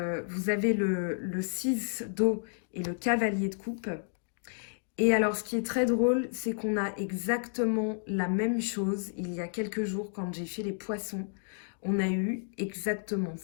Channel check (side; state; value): right; silent; digital silence